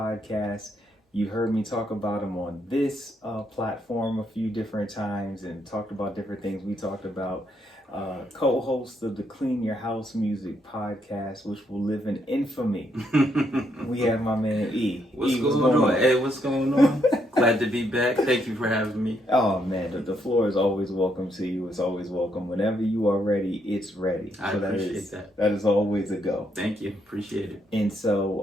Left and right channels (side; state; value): both; normal; correlation 0.75